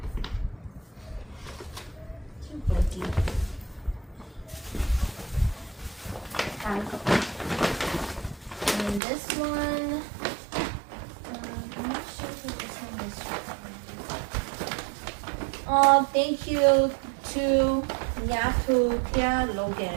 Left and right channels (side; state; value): left; drops out; at 9.0 s